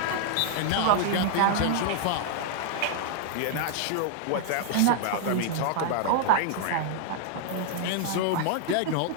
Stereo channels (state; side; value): different; both; correlation -0.01